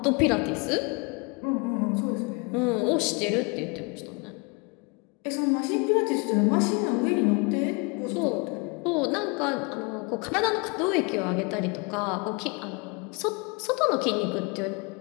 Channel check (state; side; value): quieter; right; 30.4 dB